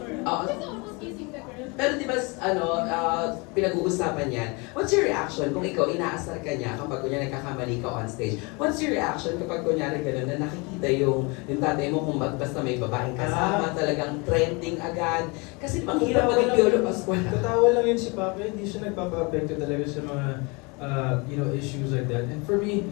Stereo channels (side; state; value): right; quieter; 28.9 dB